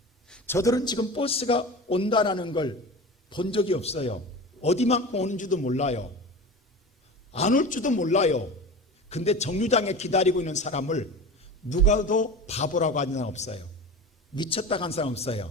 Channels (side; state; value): both; normal; correlation 0.32